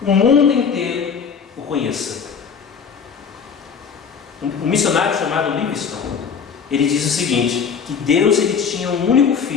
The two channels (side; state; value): right; quieter; 6.4 dB